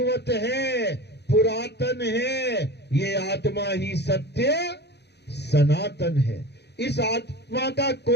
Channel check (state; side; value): late; right; 0.49 ms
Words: है, पुरातन है। ये आत्मा ही सत्य सनातन है। इस आत्मा का